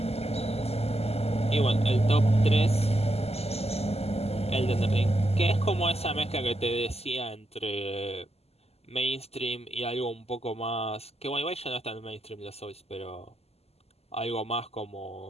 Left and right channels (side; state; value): right; late; 0.29 ms